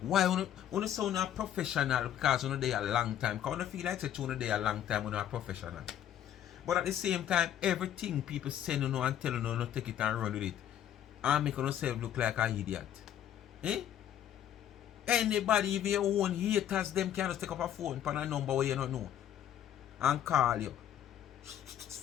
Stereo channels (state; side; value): quieter; right; 10.8 dB